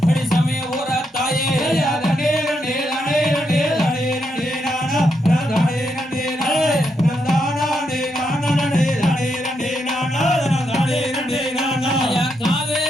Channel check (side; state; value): both; normal; correlation 0.80